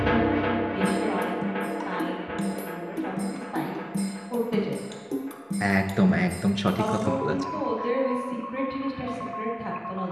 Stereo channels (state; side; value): identical; both; correlation 1.00